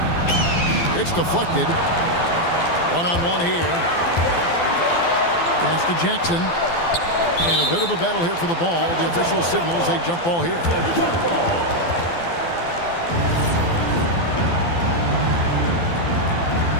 It's deflected. One-on-one here. Pass to Jackson. And a bit of a battle here for the ball. The official signals a jump ball here.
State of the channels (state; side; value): late; right; 12 ms